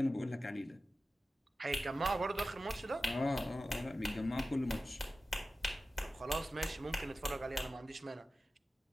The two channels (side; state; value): both; normal; correlation 0.93